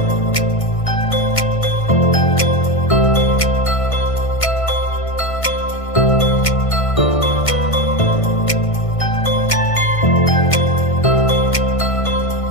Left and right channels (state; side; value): late; right; 1.5 ms